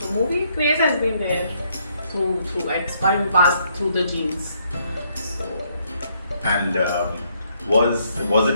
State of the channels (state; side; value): inverted; both; correlation -0.71